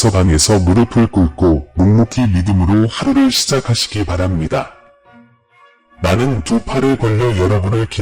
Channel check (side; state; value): both; identical; correlation 1.00